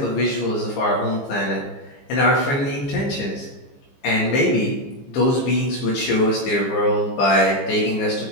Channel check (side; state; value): right; late; 15 ms